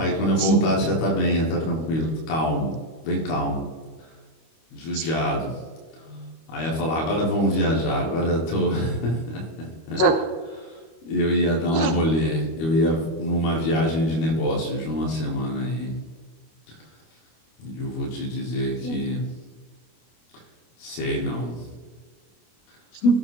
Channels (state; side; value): late; right; 25 ms